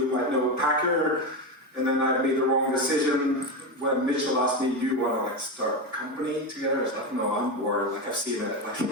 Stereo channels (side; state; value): both; normal; correlation 0.15